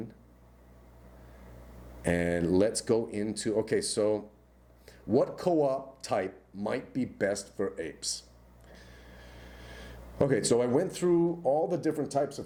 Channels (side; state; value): both; identical; correlation 1.00